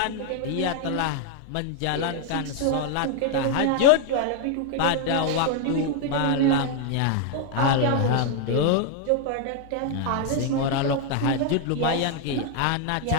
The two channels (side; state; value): both; different; correlation 0.00